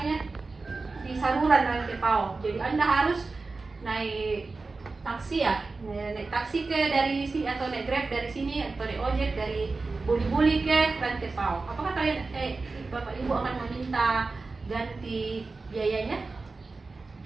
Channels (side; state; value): left; quieter; 3.8 dB